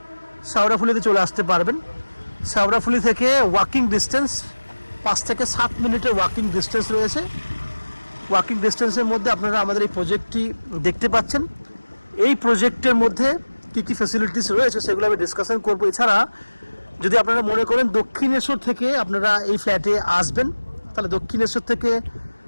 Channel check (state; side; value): inverted; both; correlation -1.00